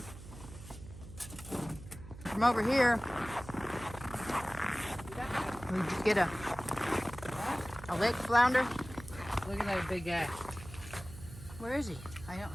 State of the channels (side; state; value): right; noise; hum, 15 dB below the sound